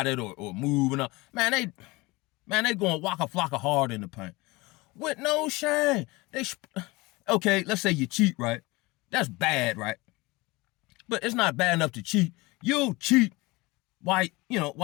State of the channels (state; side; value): quieter; right; 23.0 dB